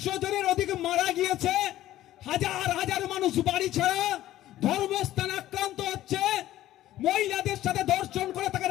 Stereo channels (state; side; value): quieter; right; 14.2 dB